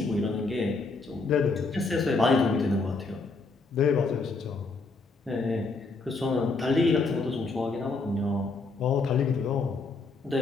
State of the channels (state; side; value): quieter; right; 3.9 dB